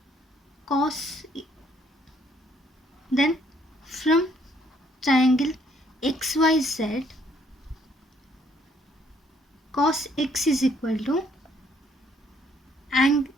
cos, then from triangle XYZ, cos X is equal to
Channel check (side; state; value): both; normal; correlation 0.66